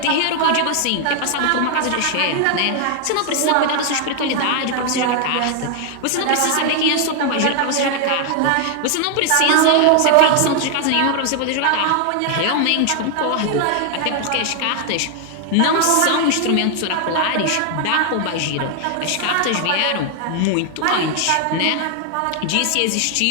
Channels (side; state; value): both; different; correlation 0.00